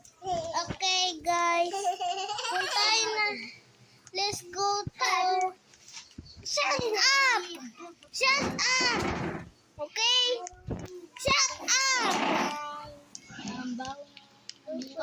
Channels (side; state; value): both; identical; correlation 1.00